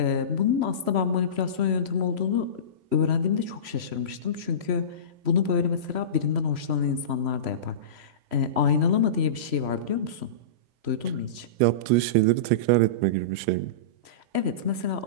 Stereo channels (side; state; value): left; late; 3.0 ms